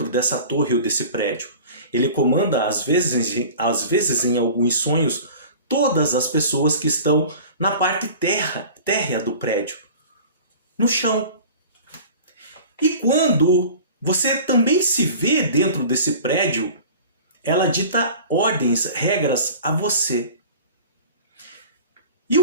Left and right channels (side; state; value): both; inverted; correlation -0.41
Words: dessa torre ou desse prédio. Ele comanda, às vezes em alguns sonhos, todas as pessoas que estão na parte térrea do prédio, no chão. E quando você também se vê dentro desse prédio, ela dita ordens, regras a você. E